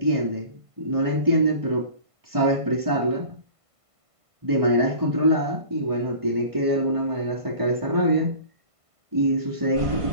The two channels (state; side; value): late; left; 1.5 ms